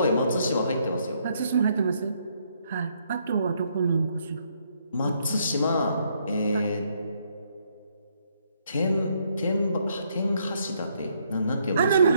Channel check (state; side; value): inverted; both; correlation -0.72